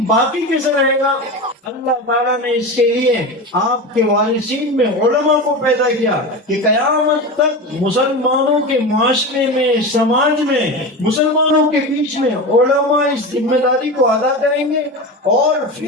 باقی کیسے رہے گا؟ اللہ تعالیٰ نے اس کے لیے آپ کے وارثین میں علماء کو پیدا کیا کہ قیامت تک مسلمانوں کے معاشرے میں، سماج میں، مسلمانوں کے بیچ میں علماء اس ذمہ داری کو ادا کریں گے. اور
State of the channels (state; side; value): normal; both; correlation 0.24